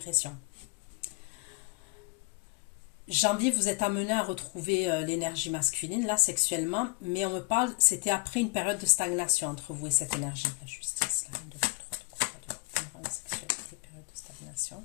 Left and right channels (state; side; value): quieter; right; 32.0 dB